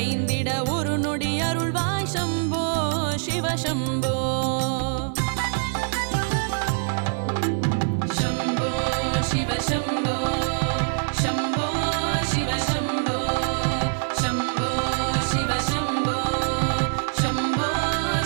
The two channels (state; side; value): silent; left; 62 dB below the other